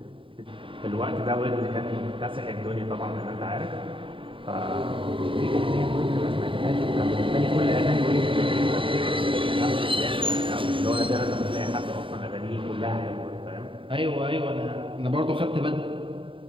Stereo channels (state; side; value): late; left; 0.25 ms